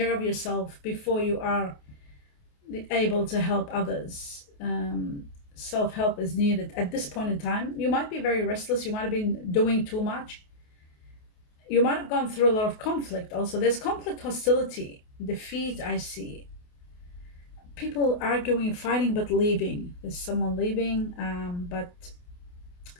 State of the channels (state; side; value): late; right; 28 ms